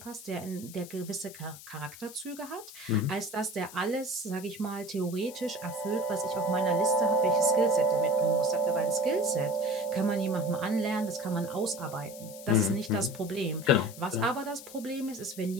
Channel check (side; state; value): left; noise; hiss, 16 dB below the sound